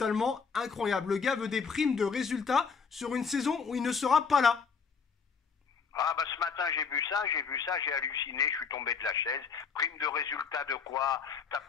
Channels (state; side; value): quieter; right; 5.7 dB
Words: incroyable. Le gars veut des primes de résultats sur une saison où il ne sera pas là. Ah bah ce matin j'ai vu ça, j'ai halluciné, je suis tombé de la chaise. Prime de résultat de quoi? T'as